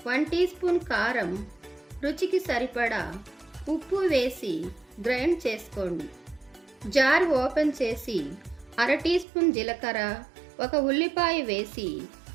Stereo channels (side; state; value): left; drops out; at 9.2 s